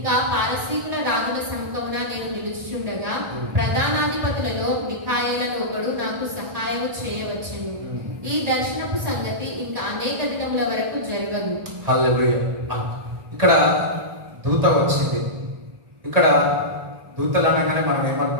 పారసీకుల రాజుల సముఖమున నేను నిలుచుచుండగా ప్రధానాధిపతులలో మిఖాయేలను ఒకడు నాకు సహాయం చేయవచ్చును. ఈ దర్శనపు సంగతి ఇంకా అనేక దినముల వరకు జరగదు. హల్లెలూయా. ఇక్కడ దూత వచ్చింది. ఇక్కడ దూతలు అనగానే మనం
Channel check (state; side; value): late; left; 1.8 ms